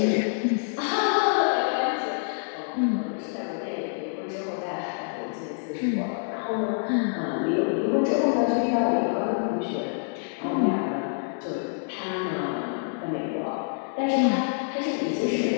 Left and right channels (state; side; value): silent; right; digital silence